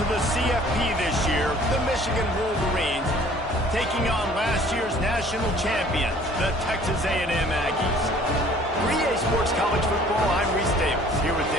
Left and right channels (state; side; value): normal; both; correlation 0.53